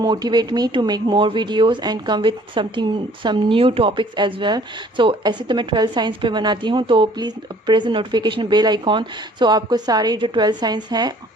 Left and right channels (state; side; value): normal; both; correlation 0.56